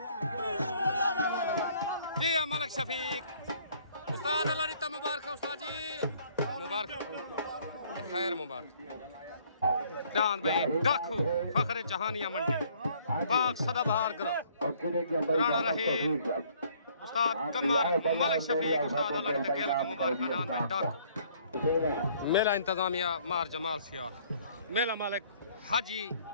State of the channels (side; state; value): both; inverted; correlation -0.61